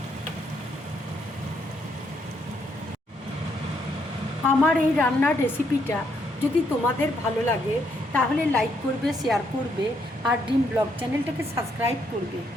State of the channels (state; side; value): normal; both; correlation 0.74